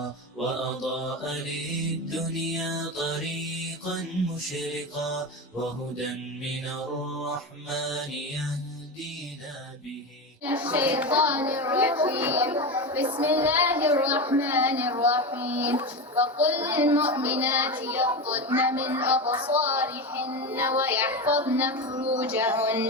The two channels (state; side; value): normal; both; correlation 0.20